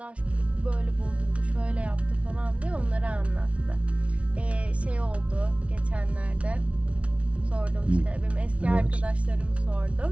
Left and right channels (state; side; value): late; left; 0.063 ms